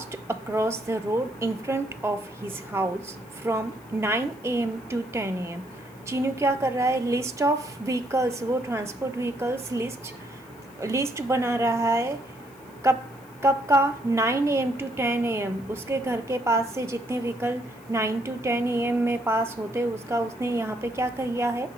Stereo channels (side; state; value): left; noise; hiss, 27 dB below the sound